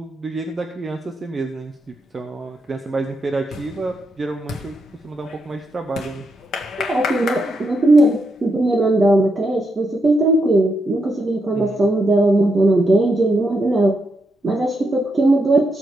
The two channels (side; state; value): both; normal; correlation 0.82